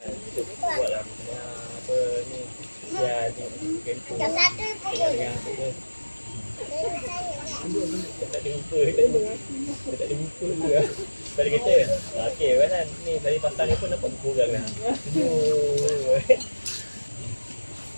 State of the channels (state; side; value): inverted; both; correlation -1.00